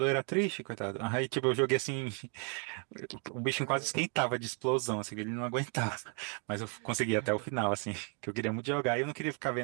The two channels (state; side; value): quieter; left; 38.2 dB